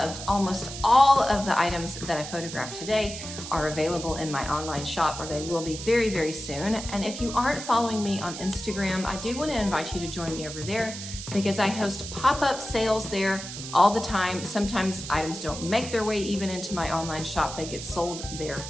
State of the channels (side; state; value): right; noise; hiss, 9 dB below the sound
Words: almost all of the items that I photographed today are available in my online shop, or they will be very, very soon. And if you aren't following me on Instagram, I do want to invite you to join me over there because I host pop-up sales there all the time. Sometimes items don't make their way even into my online shop. They get sold there